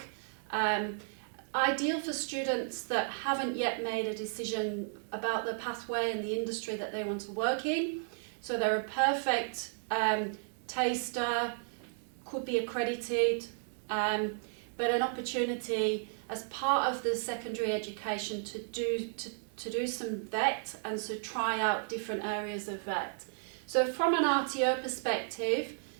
ideal for students that haven't yet made a decision about the pathway and the industry that they want to work in. So they're a perfect taster, could be accredited, but an opportunity as part of the secondary education to do some VET and to try out different areas of VET. So from an RTO perspective,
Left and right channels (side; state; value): left; silent; digital silence